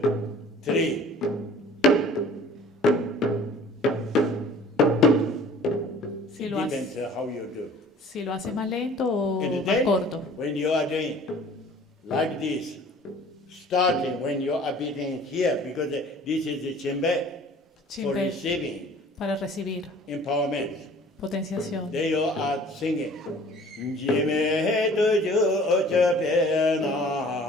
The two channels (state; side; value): normal; both; correlation 0.49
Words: 3. Si lo, Depends how you do. si lo haces más lento o And más then, corto. when you are doing like this, starting when you are beating here, because this is the chimbe for Chimbe receiving para recibir empowerment. potenciación. Then you are singing. Jime tuju chepe